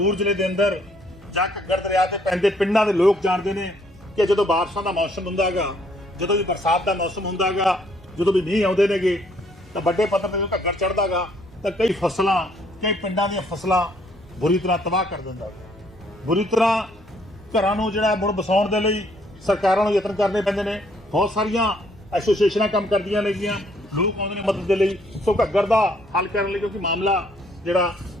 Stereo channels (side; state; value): both; normal; correlation 0.66